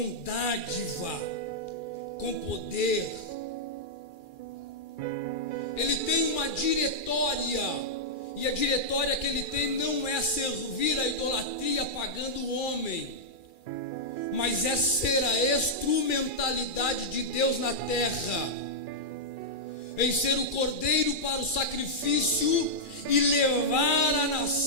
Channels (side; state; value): right; late; 2.4 ms